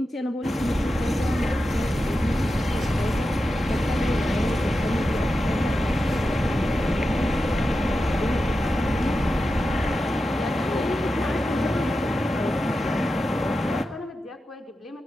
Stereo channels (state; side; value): normal; both; correlation 0.91